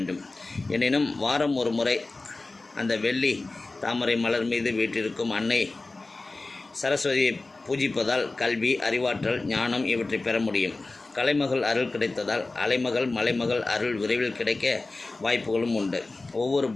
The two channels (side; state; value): right; quieter; 3.3 dB